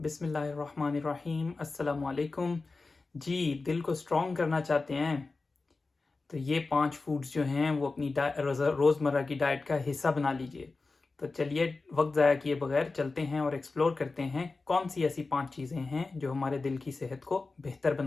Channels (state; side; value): quieter; right; 3.8 dB